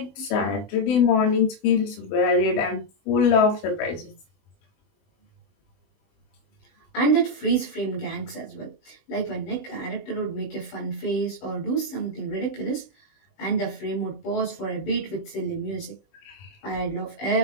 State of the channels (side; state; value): right; late; 20 ms